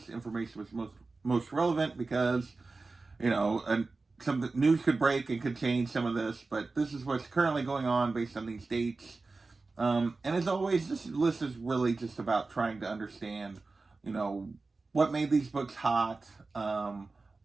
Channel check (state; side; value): quieter; left; 3.7 dB